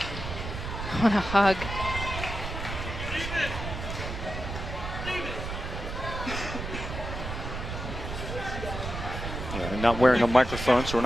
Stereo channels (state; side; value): noise; right; rumble, 6 dB below the sound